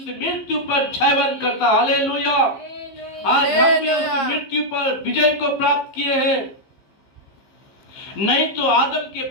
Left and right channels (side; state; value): right; late; 15 ms